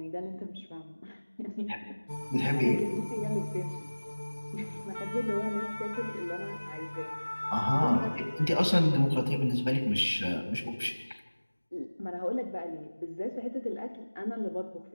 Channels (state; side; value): inverted; both; correlation -1.00